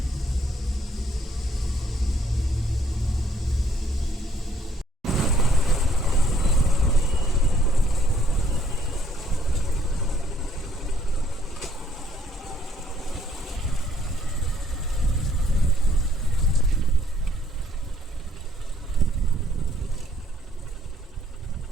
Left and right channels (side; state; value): both; normal; correlation 0.65